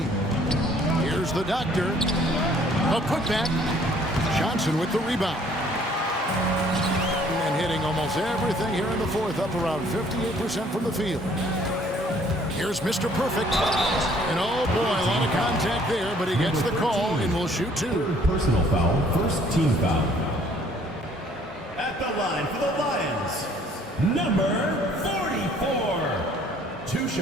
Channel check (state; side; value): normal; both; correlation 0.59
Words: Here's the Doctor. A putback. Johnson with the rebound. And hitting almost everything here in the 4th, up around 58% from the field. Here's Mr. Perfect. And oh boy, a lot of contact there, but he gets the call and will shoot 2. Personal foul, first team foul. At the line for the Lions, number 44. 2